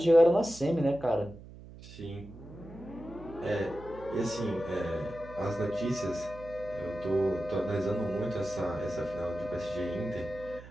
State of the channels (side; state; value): right; noise; hum, 16 dB below the sound